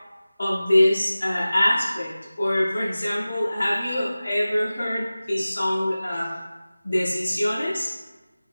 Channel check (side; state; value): both; inverted; correlation -0.97